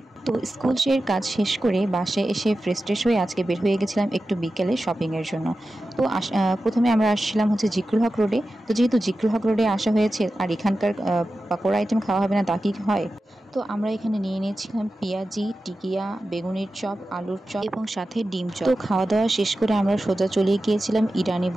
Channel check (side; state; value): both; normal; correlation 0.93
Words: তো স্কুল কাজ শেষ করে বাসায় এসে ফ্রেশ ট্রেশ হয়ে আজকে বের হয়ে গেছিলাম একটু বিকেলে শপিংয়ের জন্য। তো প্রথমে আমরা আসছিলাম হচ্ছে জিকরুল হক রোডে। তো যেহেতু জিকরুল হক রোডে আসা হয়েছে আর এখানকার পাকোড়া আইটেম খাওয়া হবে না তা কি হয়, তো আমরা এখানে নিয়ে নিয়েছিলাম পেঁয়াজি, টিকিয়া, বেগুনের চপ, আলুর চপ এবং সাথে ডিম চপ। তো খাওয়া দাওয়া শেষ করে আমরা সোজা চলে গিয়েছিলাম ইরানি